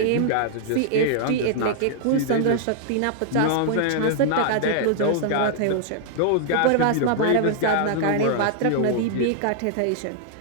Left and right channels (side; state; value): both; different; correlation -0.01